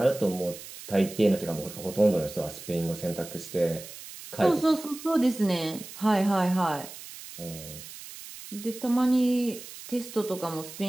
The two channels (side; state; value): right; noise; hiss, 14 dB below the sound